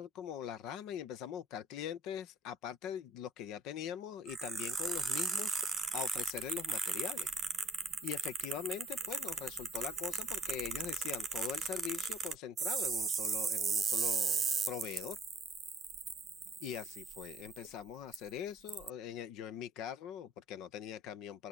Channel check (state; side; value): normal; both; correlation 0.62